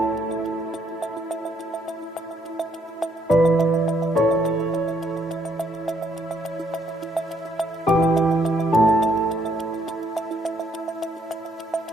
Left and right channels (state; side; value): normal; both; correlation 0.70